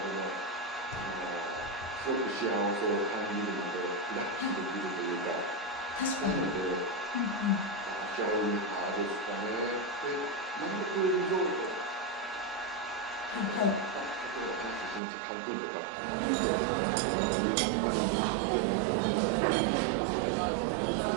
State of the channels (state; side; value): drops out; left; at 15.0 s